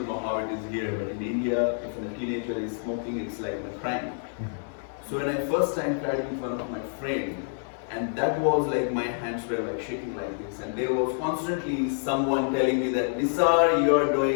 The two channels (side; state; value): right; silent; 60 dB below the other